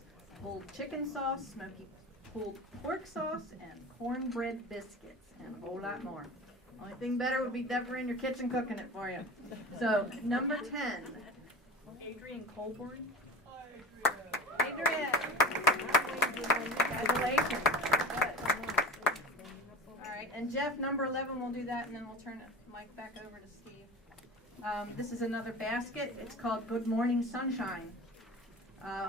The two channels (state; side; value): normal; both; correlation 0.35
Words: pulled chicken sauce, smoky pulled pork sauce, and cornbread biscuits, and a whole lot more. Only thing better would be Deborah in your kitchen cooking it for you. So, number 10, Adrian Colburn. Adrian! Congratulations. Good. All right, and Jeff, number 11, we'll do that, and then we'll turn the mic back over to Steve. This is another basket. It's called Good Morning Sunshine.